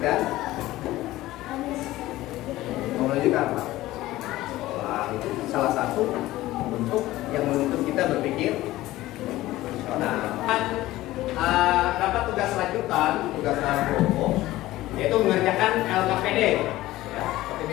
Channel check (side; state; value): right; quieter; 16.7 dB